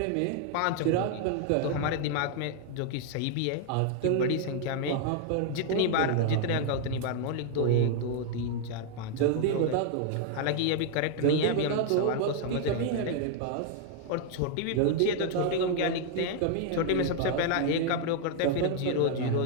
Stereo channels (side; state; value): both; different; correlation 0.00